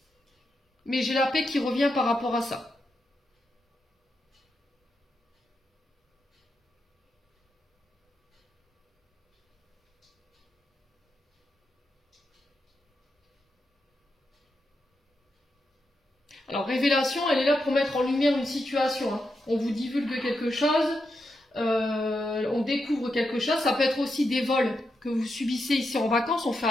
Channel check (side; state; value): both; normal; correlation 0.85